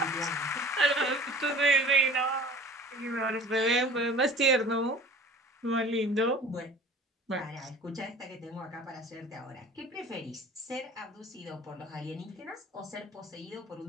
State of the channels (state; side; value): normal; both; correlation 0.45